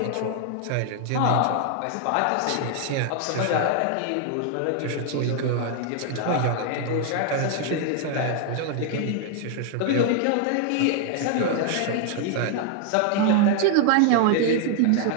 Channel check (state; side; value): different; both; correlation 0.00